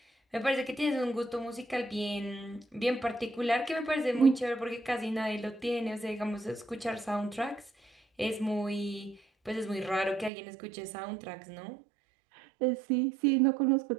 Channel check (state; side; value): drops out; left; at 10.3 s